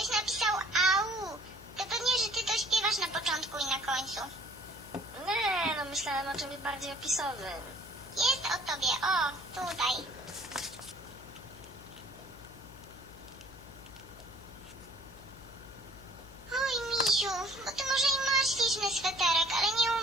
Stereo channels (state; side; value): noise; left; hum, 20 dB below the sound